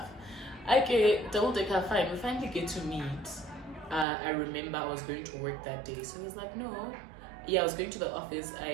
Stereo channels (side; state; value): left; drops out; at 4.0 s